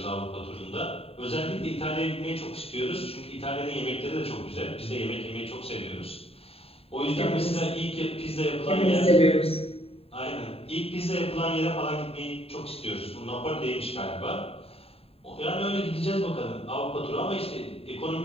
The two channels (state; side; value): late; right; 0.28 ms